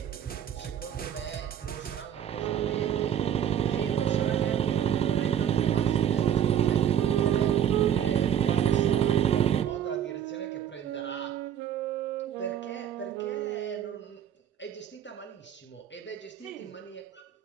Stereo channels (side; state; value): left; quieter; 9.1 dB